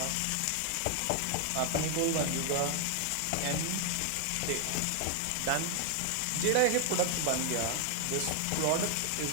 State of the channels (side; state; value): both; different; correlation 0.00